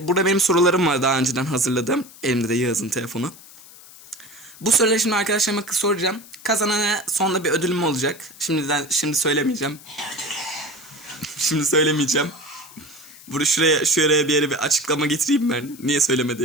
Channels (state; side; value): noise; left; hiss, 20 dB below the sound